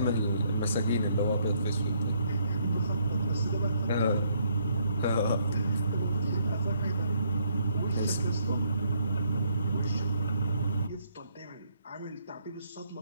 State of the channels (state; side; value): inverted; both; correlation -0.70